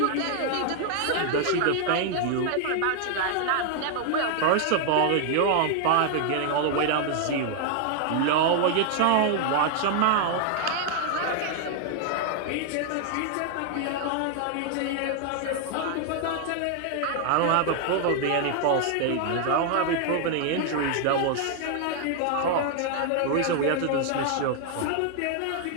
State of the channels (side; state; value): both; different; correlation 0.00